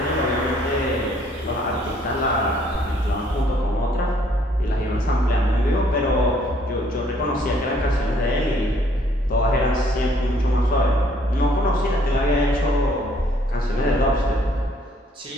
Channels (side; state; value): both; normal; correlation 0.63